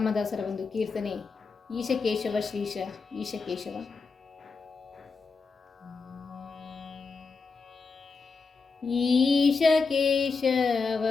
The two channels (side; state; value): right; quieter; 4.5 dB